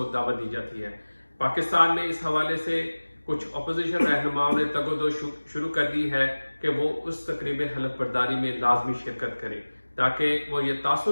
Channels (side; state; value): both; inverted; correlation -1.00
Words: دعوت دی جاتی ہے۔ پاکستان میں اس حوالے سے کچھ اپوزیشن رہنماؤں نے تگ و دو شروع کر دی ہے کہ وہ اس تقریب حلف برداری میں لازمی شرکت کریں، تاکہ وہ یہ